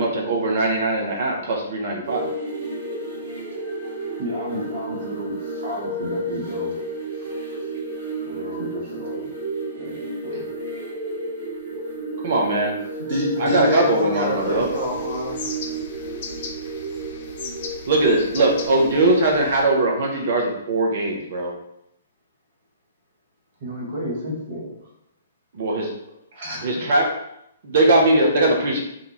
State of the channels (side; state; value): both; inverted; correlation -0.50